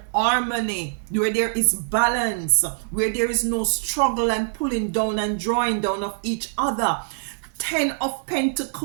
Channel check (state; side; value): silent; left; digital silence